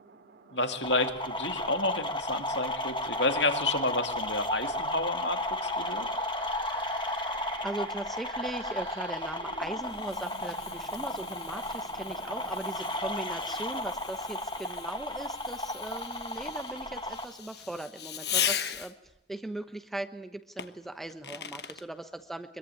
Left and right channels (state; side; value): normal; both; correlation 0.03